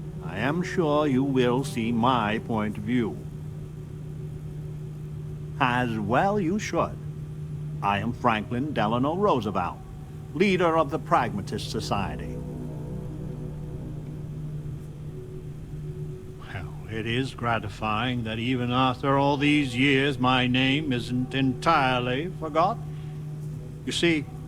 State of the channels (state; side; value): identical; both; correlation 1.00